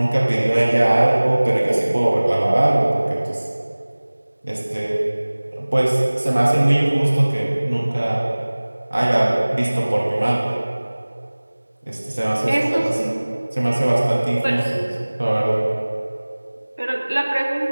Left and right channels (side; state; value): both; inverted; correlation -1.00